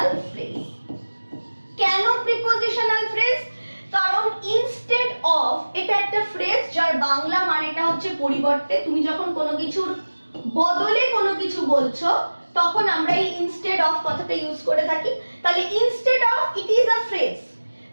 phrase. কেন প্রিপোজিশনাল ফ্রেজ? কারণ ইনস্টেড অফ এটা একটা ফ্রেজ যার বাংলা মানেটা হচ্ছে পরিবর্তে। তুমি যখন কোনো কিছুর বদলে কোনো কিছু বলছো তখন আমরা এই ইনস্টেড অফ কথাটা ইউজ করে থাকি। তাহলে instead of it is a phrase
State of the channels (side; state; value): both; inverted; correlation -1.00